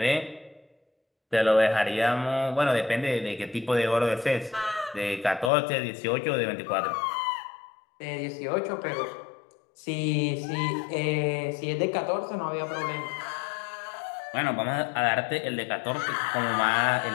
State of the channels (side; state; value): right; drops out; at 5.5 s